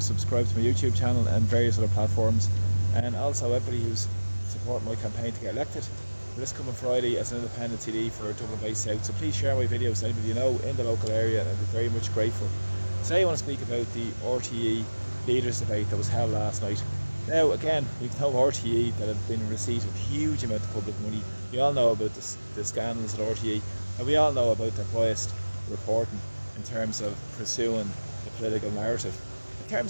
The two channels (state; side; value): inverted; both; correlation -1.00